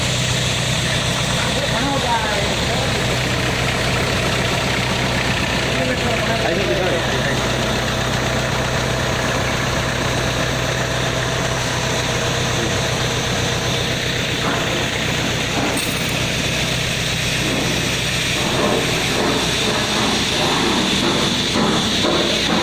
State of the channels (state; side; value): identical; both; correlation 1.00